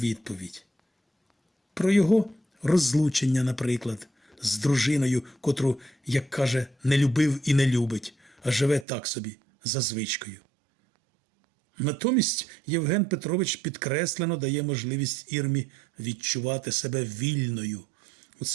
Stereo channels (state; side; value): drops out; left; at 8.8 s